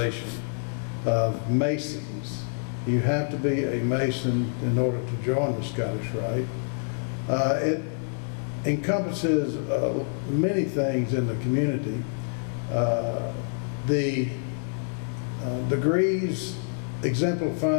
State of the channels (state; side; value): silent; right; digital silence